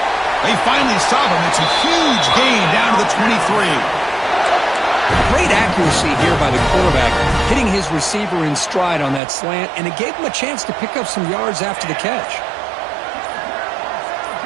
They finally stop him. It's a huge gain down to the 23. Great accuracy here by the quarterback, hitting his receiver in stride on that slant, and it gave him a chance to pick up some yards after the catch.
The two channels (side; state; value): left; drops out; at 9.2 s